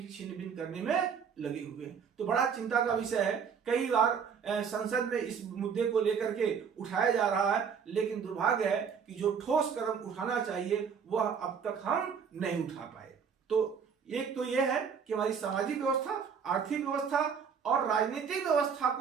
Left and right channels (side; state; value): left; quieter; 6.7 dB